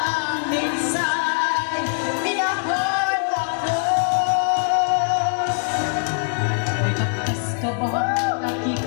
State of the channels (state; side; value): silent; right; digital silence